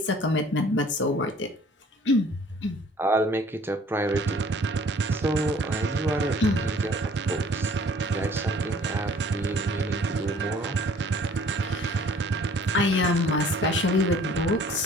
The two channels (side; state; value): both; normal; correlation 0.54